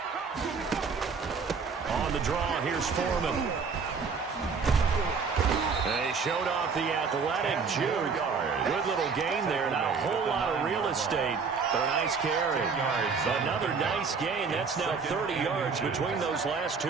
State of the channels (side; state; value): left; quieter; 5.3 dB